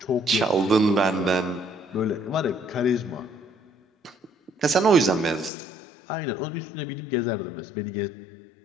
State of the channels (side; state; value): right; drops out; at 5.5 s